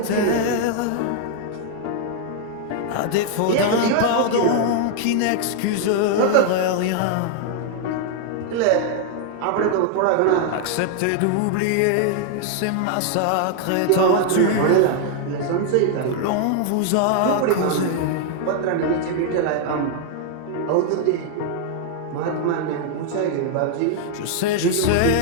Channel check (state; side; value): different; both; correlation 0.00